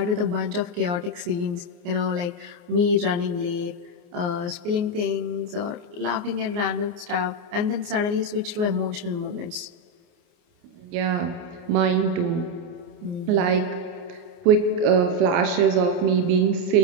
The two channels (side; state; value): left; late; 29 ms